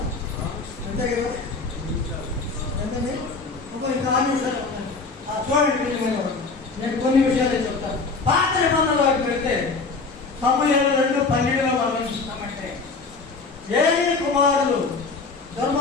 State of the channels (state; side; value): quieter; right; 4.2 dB